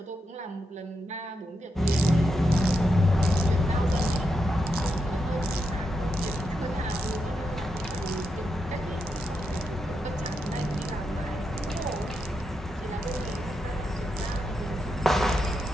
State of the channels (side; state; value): both; normal; correlation 0.84